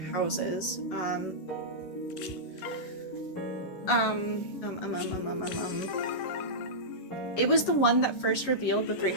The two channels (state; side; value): late; right; 11 ms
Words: Houses, it was the one that first revealed the three